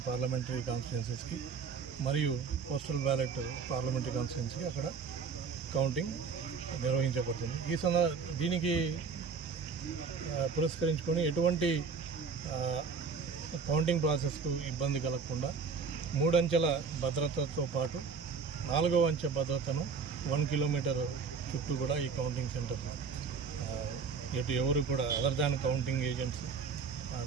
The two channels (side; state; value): left; quieter; 5.5 dB